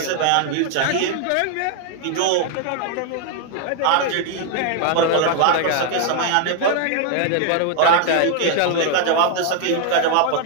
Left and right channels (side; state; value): both; different; correlation 0.00